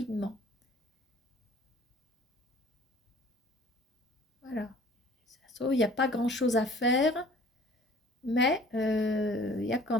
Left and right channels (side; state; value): both; normal; correlation 0.50